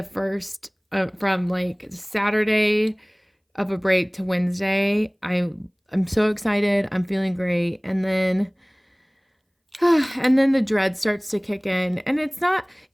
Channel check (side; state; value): both; identical; correlation 1.00